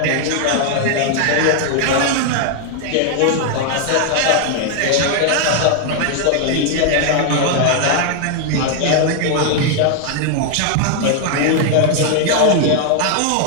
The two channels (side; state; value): both; different; correlation 0.00